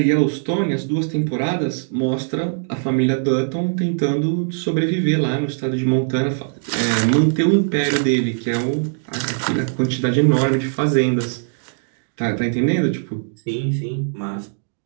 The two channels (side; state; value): left; silent; digital silence